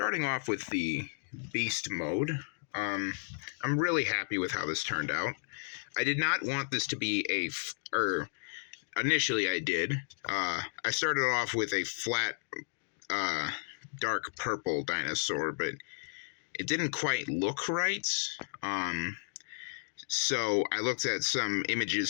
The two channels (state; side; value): silent; right; digital silence